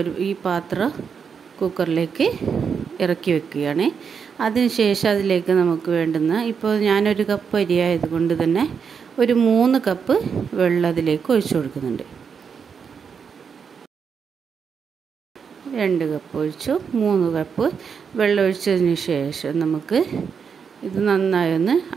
ഈ പാത്രം കുക്കറിലേക്ക് ഇറക്കി വെക്കുകയാണ്. അതിനുശേഷം അതിലേക്ക് നമുക്ക് വേണ്ടുന്ന, ഇപ്പോൾ ഞാനൊരു കപ്പ് അരിയായത് കൊണ്ട് തന്നെ ഒരു 3 കപ്പ് വെള്ളം അതിലേക്ക് ഒഴിച്ചു കൊടുക്കുന്നുണ്ട്. 2 കപ്പ് ഒഴിച്ചു, 3 കപ്പ് വെള്ളം ഒഴിച്ചതിന് ശേഷം നമുക്ക് ഇത് നന്നായി ഒന്ന്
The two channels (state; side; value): quieter; left; 6.4 dB